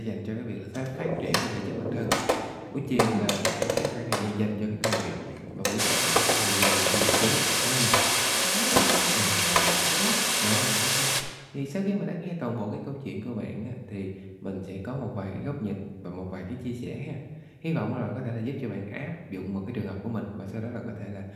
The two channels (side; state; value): both; identical; correlation 1.00